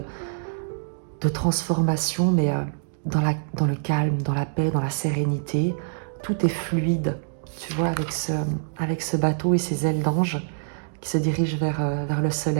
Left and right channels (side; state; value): left; silent; digital silence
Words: transformation, mais dans le calme, dans la paix, dans la sérénité. Tout est fluide, tu vois, avec ce bateau et ses ailes d'ange qui se dirigent vers le